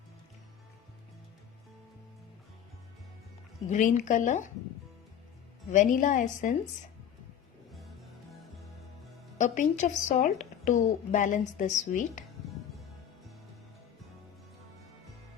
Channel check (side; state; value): right; quieter; 9.2 dB